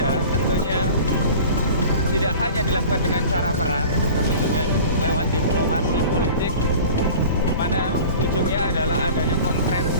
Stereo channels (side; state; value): both; inverted; correlation -0.40